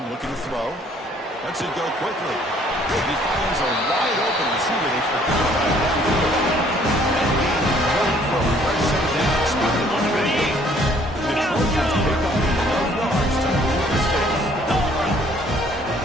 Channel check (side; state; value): both; normal; correlation 0.60